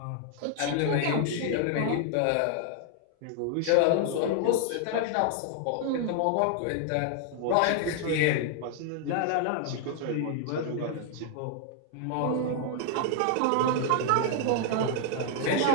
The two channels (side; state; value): both; different; correlation 0.00